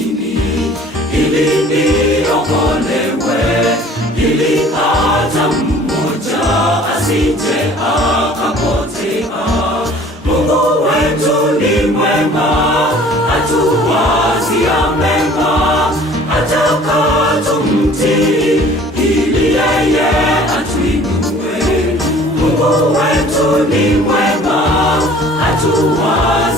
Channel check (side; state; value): both; normal; correlation 0.50